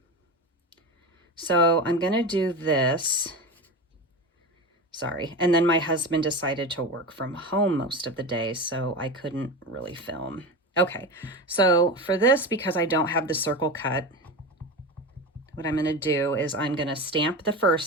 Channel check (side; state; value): both; normal; correlation 0.25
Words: So I'm going to do this Sorry. And then my husband decided to work from home most of the day, so I couldn't really film. Okay, so for this, because I don't have the circle cut, what I'm going to do is I'm going to stamp the